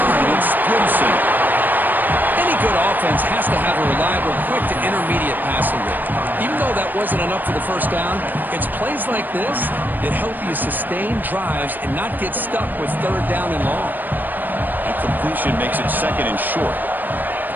It's Gibson. Any good offense has to have a reliable, quick to intermediate passing rate. Even though that wasn't enough for the first down, it's plays like this that help you sustain drives and not get stuck with third down and long. And completion makes it second and short.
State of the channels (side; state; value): left; late; 0.089 ms